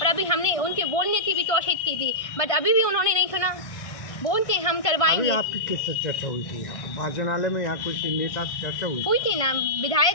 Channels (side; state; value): right; late; 1.5 ms